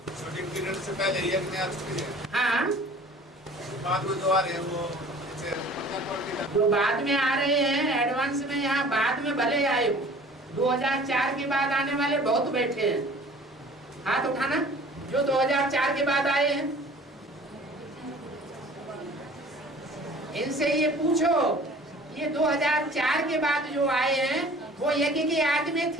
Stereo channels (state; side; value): normal; both; correlation 0.48